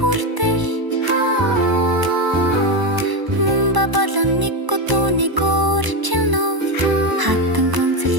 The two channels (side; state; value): left; late; 1.0 ms